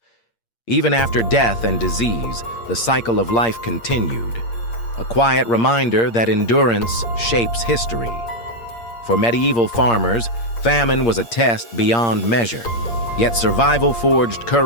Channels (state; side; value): late; right; 8.6 ms